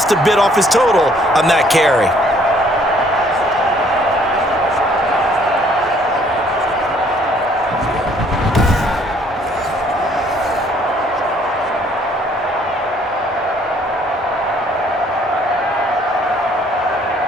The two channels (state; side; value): normal; both; correlation 0.61